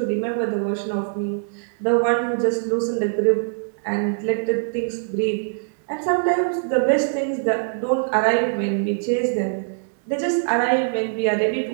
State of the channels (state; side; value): silent; left; digital silence